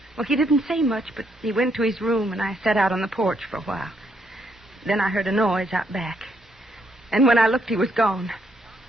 Well, he didn't say much, but he went to his room, and I sat out on the porch for a while. Then I heard a noise out back. And when I looked, he was gone.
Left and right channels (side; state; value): both; normal; correlation 0.74